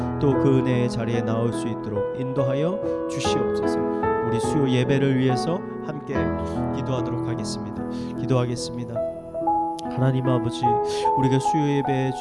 또 그 은혜의 자리에 나올 수 있도록 인도하여 주시옵소서. 우리 수요 예배를 위해서 함께 기도하도록 하겠습니다. 기도하겠습니다. 하나님 아버지, 우리가 수요 예배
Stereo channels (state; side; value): identical; both; correlation 1.00